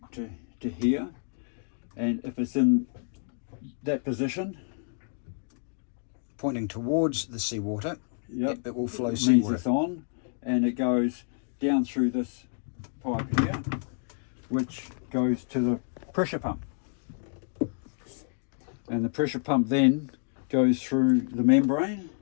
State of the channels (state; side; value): silent; right; 59 dB below the other